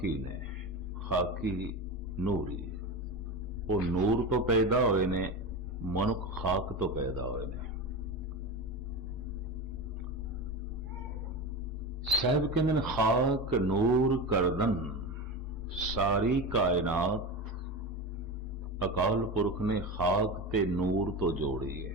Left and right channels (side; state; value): both; normal; correlation 0.23